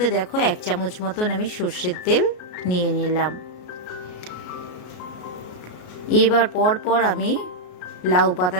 দেখো 1 চামচ মতন আমি সর্ষের তেল নিয়ে নিলাম। এবার পর আমি লাউ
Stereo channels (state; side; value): late; right; 33 ms